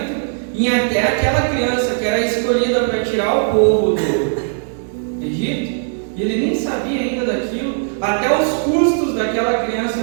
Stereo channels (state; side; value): silent; left; digital silence